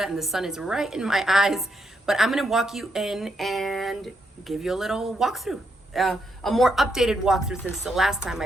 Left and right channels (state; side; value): normal; both; correlation 0.79